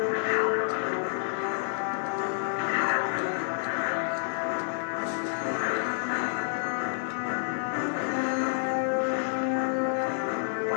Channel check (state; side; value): silent; right; digital silence